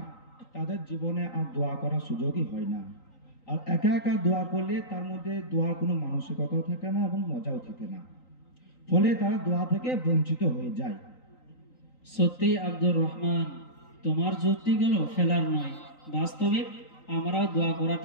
তাদের জীবনে আর দোয়া করার সুযোগই হয় না। আর একা একা দোয়া করলে তার মধ্যে দোয়ার কোনো মানসিকতাও থাকে না এবং মজাও থাকে না, ফলে তারা দোয়া থেকে বঞ্চিত হয়ে যায়। সত্যি আব্দুর রহমান, তোমার যুক্তিগুলো ফেলার নয়, বাস্তবিক আমরাও দোয়া করা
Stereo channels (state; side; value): late; right; 3.9 ms